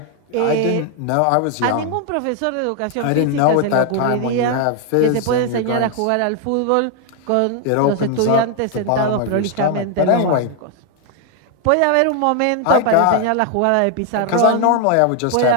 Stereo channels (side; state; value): both; different; correlation 0.00